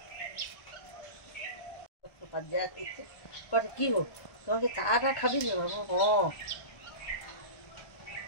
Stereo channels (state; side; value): late; right; 1.4 ms